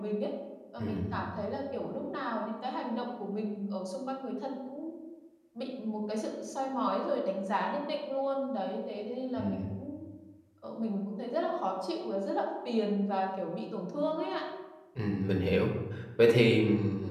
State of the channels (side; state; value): both; identical; correlation 1.00